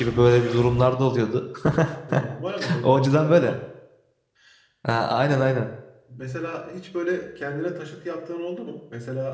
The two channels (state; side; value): identical; both; correlation 1.00